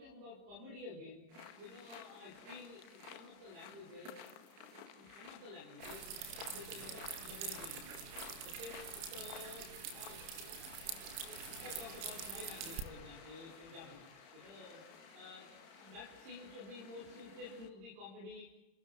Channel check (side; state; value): left; late; 30 ms